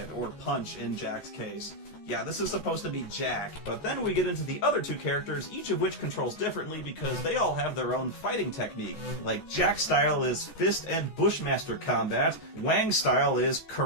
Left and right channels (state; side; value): late; right; 14 ms